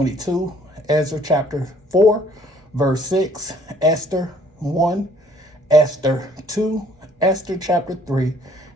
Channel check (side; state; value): both; normal; correlation 0.60